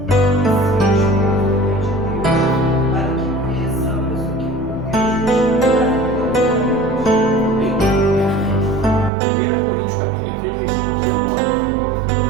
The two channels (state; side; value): drops out; left; at 9.1 s